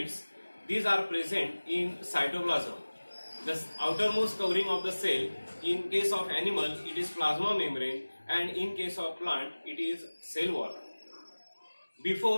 these are present in cytoplasm. The outermost covering of the cell, in case of animal it is plasma membrane, and in case of plant it is cell wall.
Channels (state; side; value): inverted; both; correlation -1.00